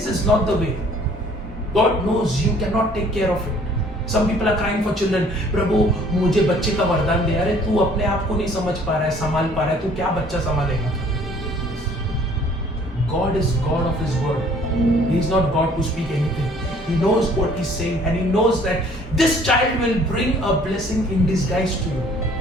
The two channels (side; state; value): both; normal; correlation 0.56